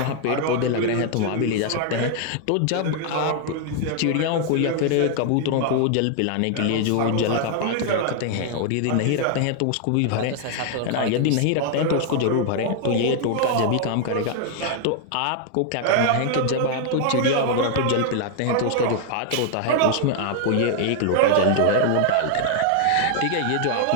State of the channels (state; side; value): different; both; correlation 0.00